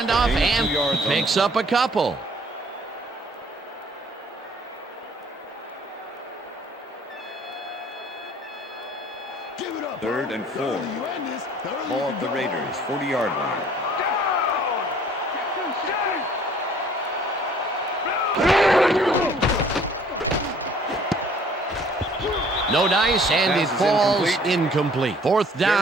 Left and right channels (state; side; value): normal; both; correlation 0.56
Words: and picks up a couple. Third and 4. Ball at the Raiders' 40-yard line. No dice, and it falls incomplete. 4th